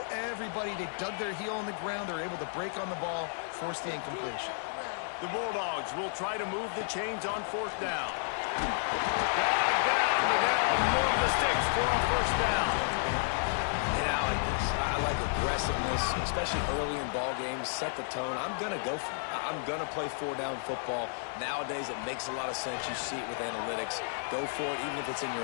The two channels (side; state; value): right; silent; digital silence